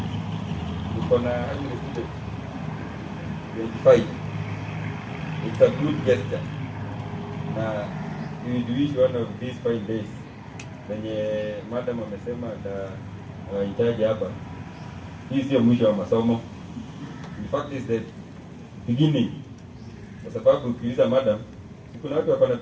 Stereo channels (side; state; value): both; identical; correlation 1.00